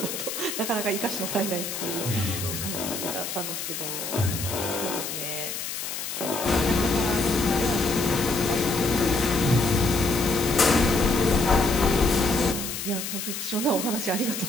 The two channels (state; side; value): noise; left; hiss, 5 dB below the sound